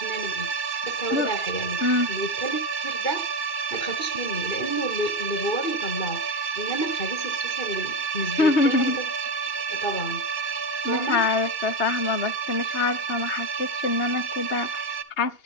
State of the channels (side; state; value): right; late; 2.8 ms